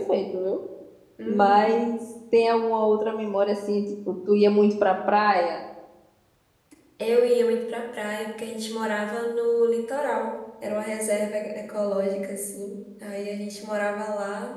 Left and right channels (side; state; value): both; identical; correlation 1.00